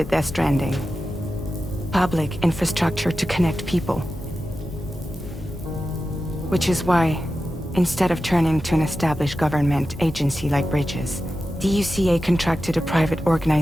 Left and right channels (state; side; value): normal; both; correlation 0.92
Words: Death Stranding. Public infrastructure to connect people. Which is why, instead of turning to an established government agency like Bridges, the UCA contracted a private